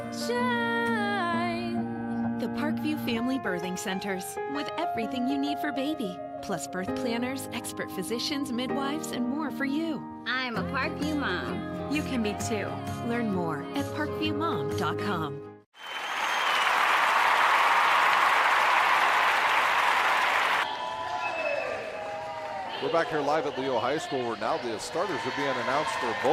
The Parkview Family Birthing Centers, with everything you need for baby, plus birth planners, expert physicians, midwives, and more for you. I'm a Parkview mom. You can be too. Learn more at parkviewmom.com. We're back here live at Leo High School where now the starters are being announced for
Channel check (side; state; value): both; identical; correlation 1.00